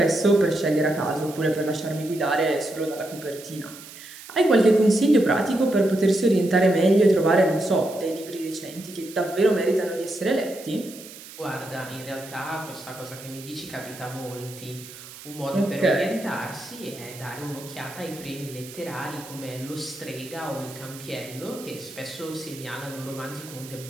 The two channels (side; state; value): right; noise; hiss, 16 dB below the sound